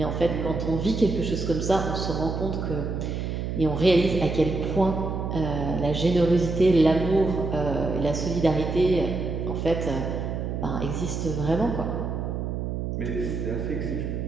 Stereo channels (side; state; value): right; noise; hum, 3 dB below the sound